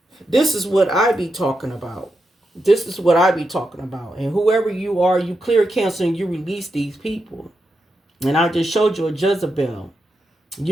this is what I be talking about. This is what I be talking about. And whoever you are, you clear, cancel, and you release these people. And I just showed you a Jezebel.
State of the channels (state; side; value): normal; both; correlation 0.86